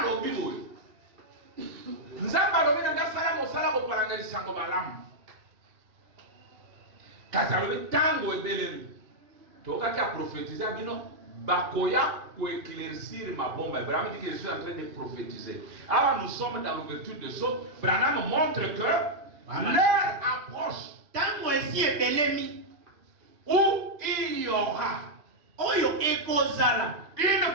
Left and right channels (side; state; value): left; late; 2.8 ms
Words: boye. Nzamba alobi nga sala mosala bo palanga sango malamu. Kasi alobi tango ebelemi. Tokaki a prophétiser bino bakoya pour éclaircir ma bombe. Branham dit que je suis en train de prophétiser. Alors nous sommes dans l'ouverture de choses. Branham montre que l'heure approche. Tango esi ebelemi où il y aura oyo ekozala une